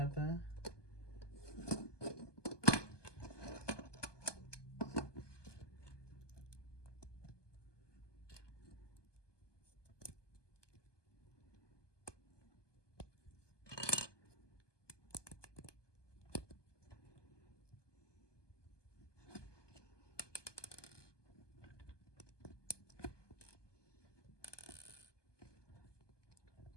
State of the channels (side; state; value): right; late; 1.2 ms